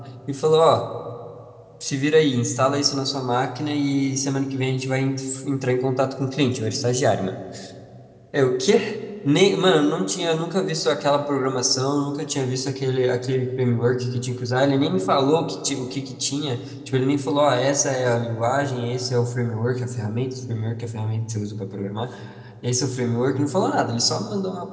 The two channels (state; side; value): identical; both; correlation 1.00